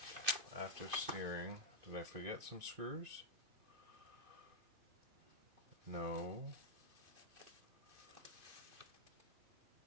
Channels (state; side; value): late; left; 2.5 ms